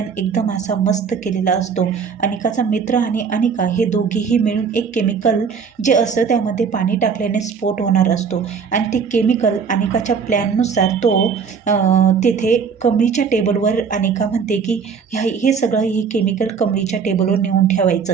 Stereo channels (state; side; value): quieter; left; 6.1 dB